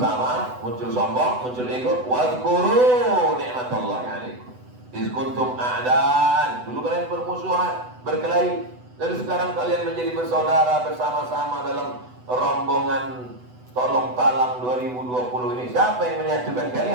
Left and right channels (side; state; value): left; late; 8.0 ms